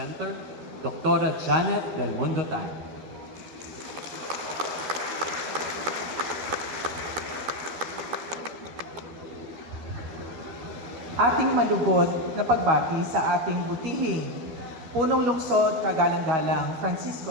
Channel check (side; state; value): left; late; 13 ms